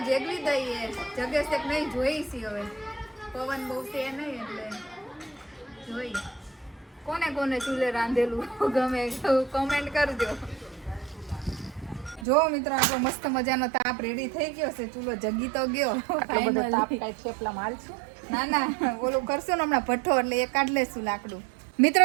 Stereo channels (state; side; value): drops out; left; at 12.2 s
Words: જેગવી દઈએ જગેશ એક નહીં જોઈશી હવે પવન બહુ છે નહીં એટલે જોઈ કોને કોને ચૂલે રાંધેલું ગમે કોમેન્ટ કરજો જો મિત્રો આપણો મસ્ત મજાનો તાપ રેડી થઈ ગયો છે ચૂલો જગી તો ગયો ના ના ઓલું કરશું ને હમણાં ભઠ્ઠો એટલે એ કાઢ લેશું લાકડું